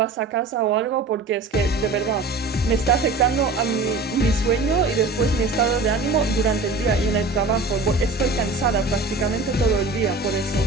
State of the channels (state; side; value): quieter; left; 3.4 dB